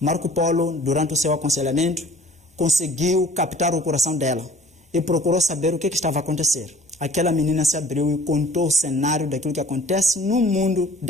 Polo, durante o seu aconselhamento, conseguiu captar o coração dela e procurou saber o que estava a acontecer. Aquela menina se abriu e contou o cenário daquilo que acontece no mundo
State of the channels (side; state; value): both; normal; correlation 0.51